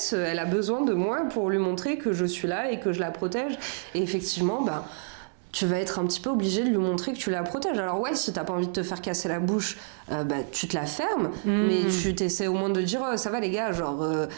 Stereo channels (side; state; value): left; silent; digital silence